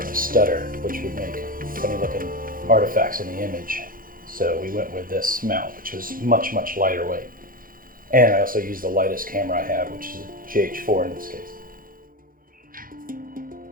to stutter, which would make funny looking artifacts in the image. So we went with this mount, which was much, much lighter weight. And I also used the lightest camera I have, which is a GH4 in this case.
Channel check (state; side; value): late; left; 0.41 ms